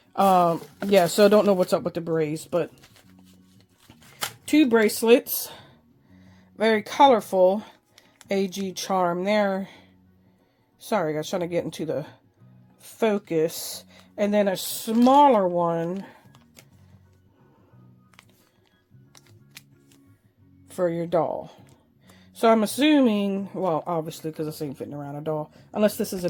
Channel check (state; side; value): identical; both; correlation 1.00